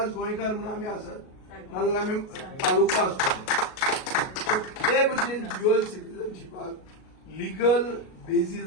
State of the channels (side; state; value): right; late; 38 ms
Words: गोंयकार म्हणून आमी आसात, नाजाल्यार आमी तालुको आसतलो. ते भशेन ड्युअल सिटीजनशिपाक लिगल